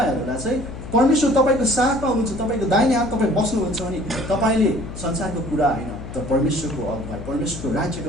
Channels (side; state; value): left; noise; hum, 11 dB below the sound